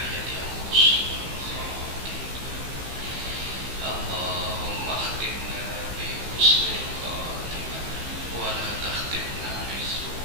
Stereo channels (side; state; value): left; late; 15 ms